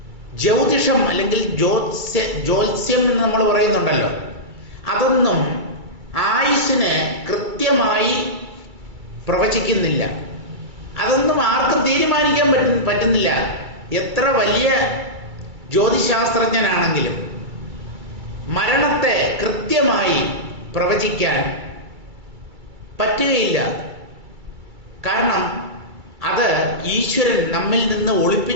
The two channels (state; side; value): late; left; 2.3 ms